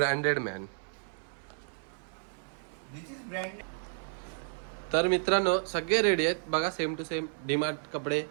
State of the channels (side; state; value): left; silent; 56 dB below the other